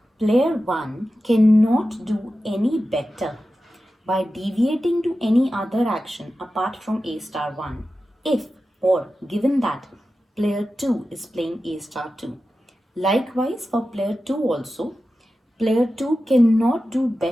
player 1 cannot do any better by deviating to any other action apart from A star 1 if or given that player 2 is playing A star 2. Likewise for player 2 also, player 2 cannot do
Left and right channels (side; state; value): both; normal; correlation 0.93